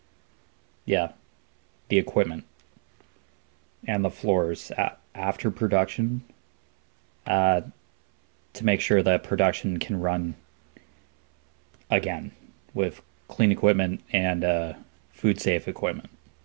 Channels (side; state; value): left; silent; 61 dB below the other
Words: yeah, the equipment and the floors after production to make sure that production can run again with clean equipment and food safe equipment